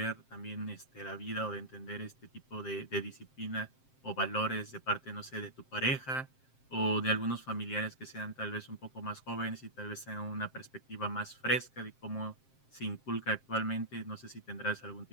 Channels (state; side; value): late; right; 7.6 ms